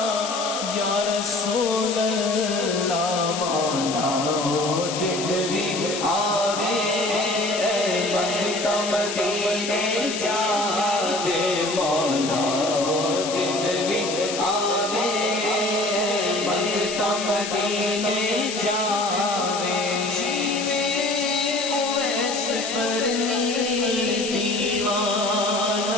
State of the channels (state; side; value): noise; left; hiss, 6 dB below the sound